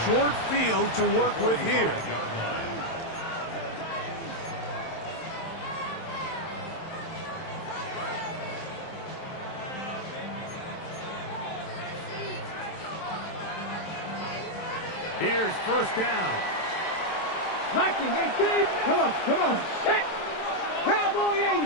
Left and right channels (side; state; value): right; late; 27 ms